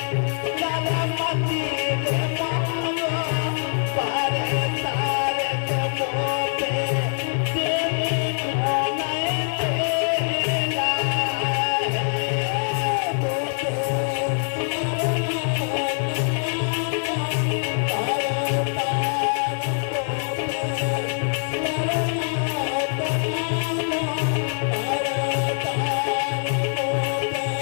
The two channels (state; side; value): silent; right; digital silence